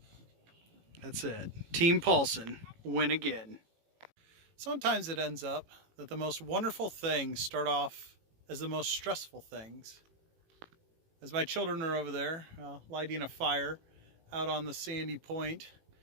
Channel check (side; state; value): left; late; 18 ms